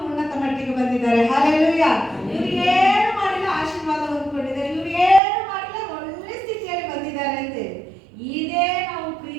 ಉನ್ನತ ಮಟ್ಟಿಗೆ ಬಂದಿದ್ದಾರೆ. ಹಲ್ಲೆಲೂಯಾ. ಇವರು ಏನು ಮಾಡಿಲ್ಲ ಆಶೀರ್ವಾದ ಹೊಂದಿಕೊಂಡಿದ್ದಾರೆ, ಇವರು ಏನು ಮಾಡಿಲ್ಲ ಒಳ್ಳೆ ಸ್ಥಿತಿಯಲ್ಲಿ ಬಂದಿದ್ದಾರೆ ಅಂತ. ಇದೇ ನಾವು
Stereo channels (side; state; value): left; drops out; at 5.2 s